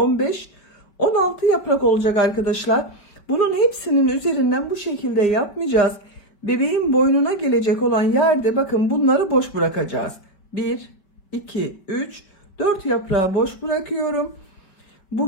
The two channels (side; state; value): right; late; 5.2 ms